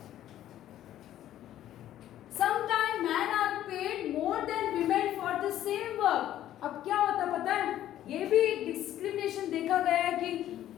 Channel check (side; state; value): right; quieter; 12.4 dB